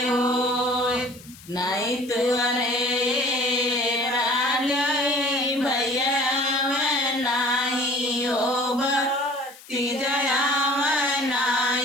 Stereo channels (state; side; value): noise; left; hiss, 21 dB below the sound